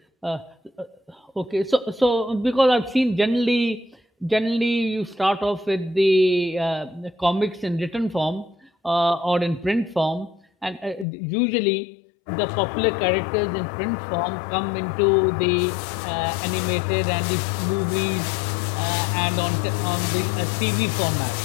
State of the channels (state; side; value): drops out; right; at 11.1 s